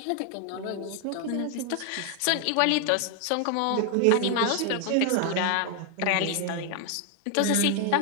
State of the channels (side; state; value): both; different; correlation 0.00